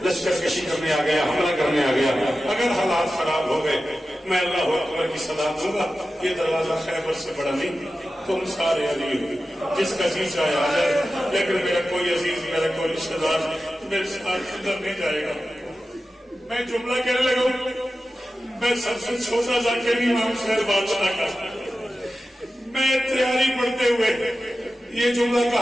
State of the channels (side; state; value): both; normal; correlation 0.93